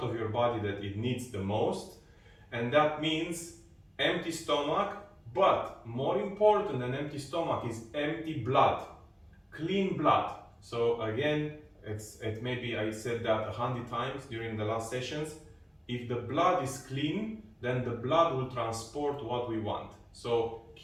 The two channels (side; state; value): both; identical; correlation 1.00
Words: of your body that it needs the most, and that means empty stomach, but more important than empty stomach is empty blood, clean blood. So again, maybe I said that 100 times during the last sessions, if the blood is clean, then the blood will transport what we want. So